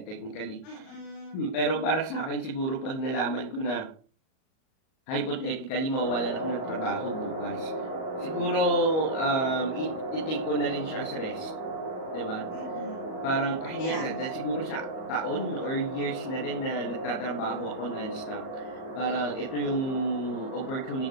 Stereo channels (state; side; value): late; right; 38 ms